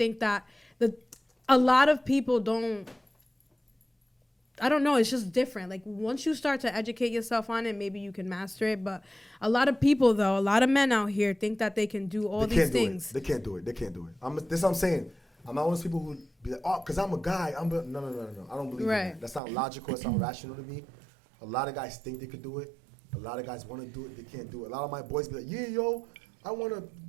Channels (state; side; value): drops out; left; at 19.4 s